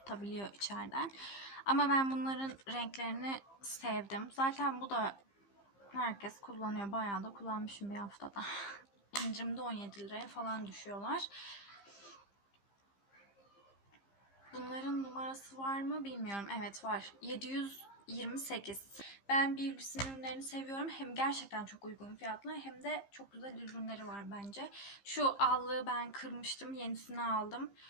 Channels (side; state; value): right; late; 15 ms